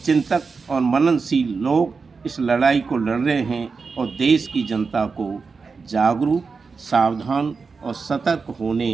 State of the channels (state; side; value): quieter; left; 4.8 dB